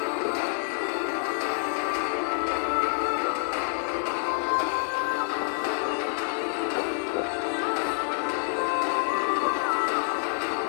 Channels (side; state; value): right; silent; 57 dB below the other